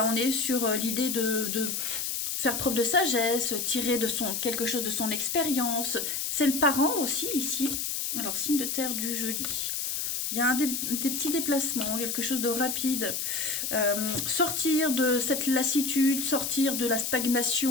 on est sur l'idée de faire preuve de sagesse, tirer de quelque chose de son expérience. C'est le parent aussi, ici. Alors, signe de terre du jeudi. Il y a des petits déplacements, quelque chose de rapide. Sortir de cette lassitude, sortir de la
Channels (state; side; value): noise; left; hiss, 2 dB below the sound